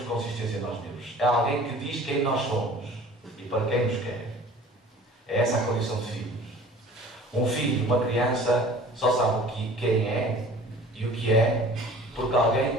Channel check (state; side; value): normal; both; correlation 0.46